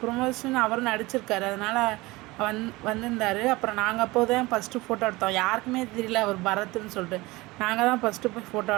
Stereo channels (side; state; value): left; quieter; 21.4 dB